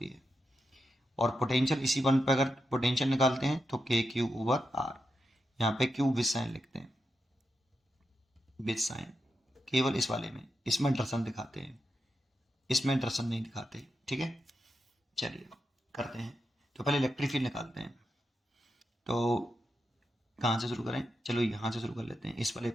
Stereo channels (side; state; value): both; normal; correlation 0.87